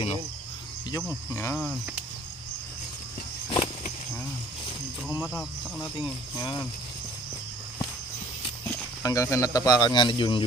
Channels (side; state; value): both; normal; correlation 0.54